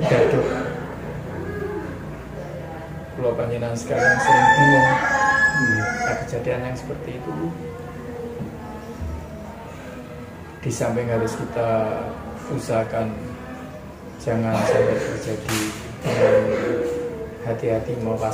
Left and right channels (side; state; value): both; identical; correlation 1.00